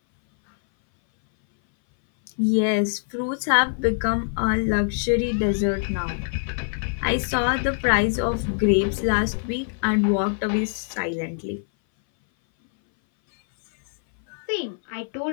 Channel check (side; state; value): right; silent; 59 dB below the other